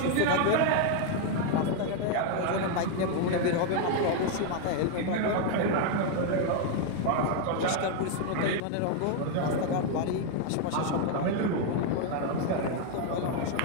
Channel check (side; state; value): both; different; correlation 0.00